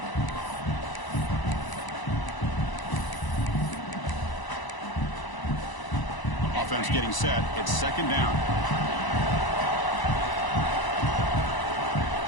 Offense getting set. It's 2nd down.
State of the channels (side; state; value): right; late; 1.0 ms